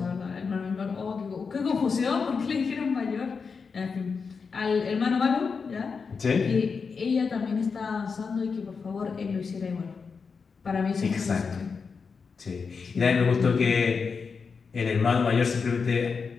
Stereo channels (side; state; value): right; quieter; 5.3 dB